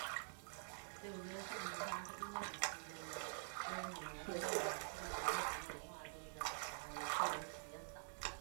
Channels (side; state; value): left; silent; digital silence